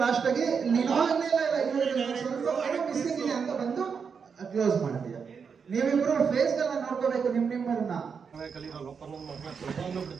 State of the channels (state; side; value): quieter; left; 6.1 dB